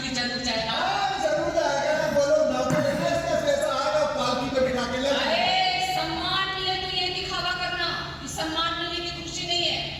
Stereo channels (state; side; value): identical; both; correlation 1.00